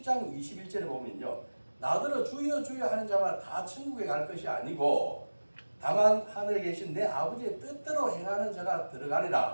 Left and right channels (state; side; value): inverted; both; correlation -1.00